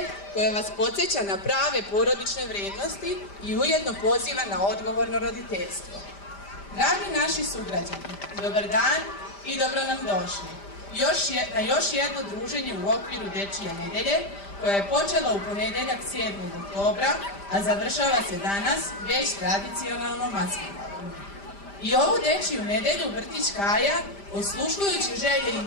koja vas podsjeća na prave porodične vrednosti i ujedno poziva na odgovorno roditeljstvo. Dragi naši sugrađani, dobar dan i dobro nam došli na još jedno druženje u okviru dečije nedelje koja je počela u ponedeljak 7. oktobra, a završava se danas već tradicionalno maskenbalom. I ovu dečiju nedelju vrtić Kaja, osluškujući želje i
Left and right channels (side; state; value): right; late; 5.0 ms